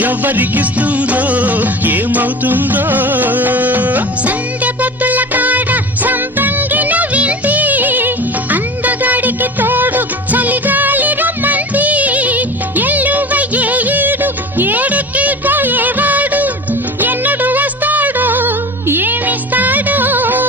ఎవరికిస్తుందో ఏమవుతుందో సందె పొద్దుల కాడ సంపంగిన బిల్ది అందగాడికి తోడు చలిగాలి రమ్మంది ఎల్లువయ్యే ఈడు ఏడెక్కి పోయేవాడు ఎన్నడు వస్తాడో ఏమిస్తాడో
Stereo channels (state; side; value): normal; both; correlation 0.34